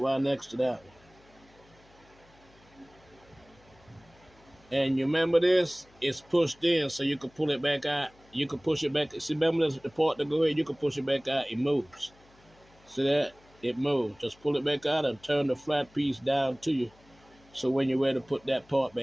right next to that one. And you remember this? It's pushed in, so you can pull it back out. You can push it back. See, remember this, the part that go here? You can push it back out. It moves. See that? It moves. Just pull it back out and turn the flat piece down to you. So when you're ready to put that part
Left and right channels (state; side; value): noise; left; hum, 29 dB below the sound